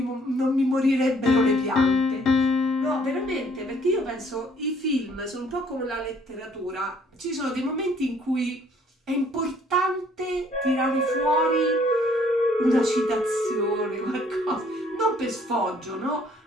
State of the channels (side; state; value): both; normal; correlation 0.61